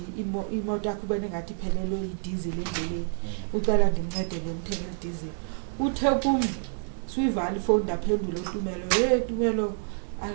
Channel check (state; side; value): silent; left; digital silence